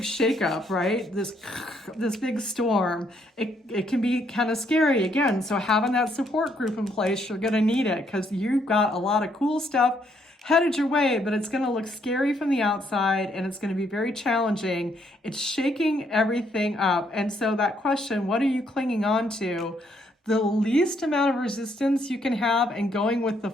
shakeup, right, this big storm, it can be kind of scary again. So having that support group in place, you're going to need it because you've got a lot of cool stuff headed your way, but it's going to look scary from the outside and it's going to be very challenging. It's shaking everything up. And so that question, what are you clinging on to? The least amount of resistance you can have and going with the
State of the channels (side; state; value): both; normal; correlation 0.71